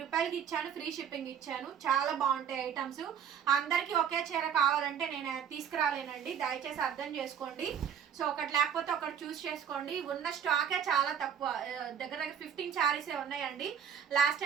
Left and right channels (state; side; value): quieter; left; 8.2 dB